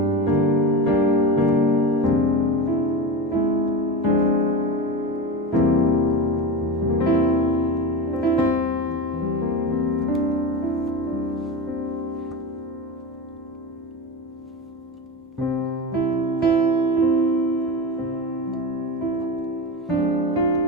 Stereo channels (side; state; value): both; normal; correlation 0.23